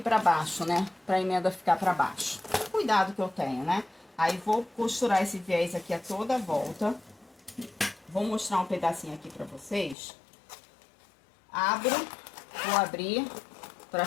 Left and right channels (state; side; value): drops out; right; at 10.0 s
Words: baixo, né? Pra emenda ficar pra baixo. Cuidado que eu tenho, né? Aí vou costurar esse viés aqui a toda a volta. Vou mostrar um pedacinho aqui pra vocês. Vou abrir pra